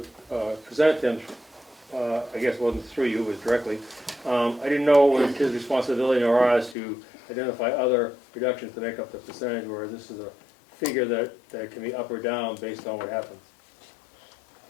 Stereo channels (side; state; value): right; drops out; at 6.8 s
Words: presented to him. I guess it wasn't through you, it was directly. I didn't know it was his responsibility or ours to identify other reductions to make up the percentage, where this is a figure that can be up or down based on what happens.